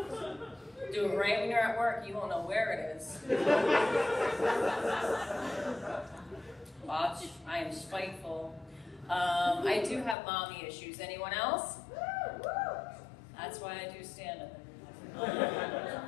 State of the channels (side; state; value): right; drops out; at 10.2 s